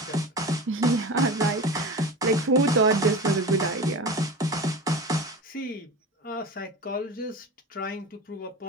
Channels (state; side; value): normal; both; correlation 0.30